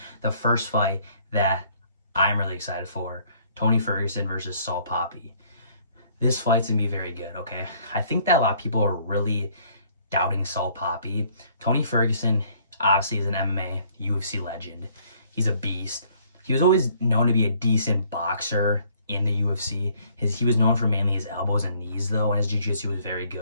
the first fight that I'm really excited for. Tony Ferguson versus Papi. This fight's going to be very good, okay? I think that a lot of people are really doubting Papi. Tony Ferguson obviously is an MMA, UFC legend. He's a beast. He was always known to be a decent boxer in the UFC. He was known for mainly his elbows and knees though, and his jiu-jitsu was very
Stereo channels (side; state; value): both; inverted; correlation -0.61